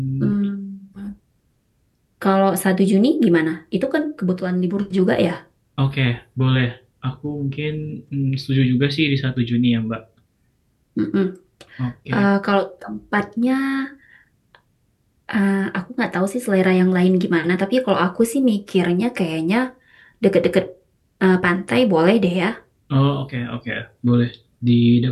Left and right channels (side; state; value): both; identical; correlation 1.00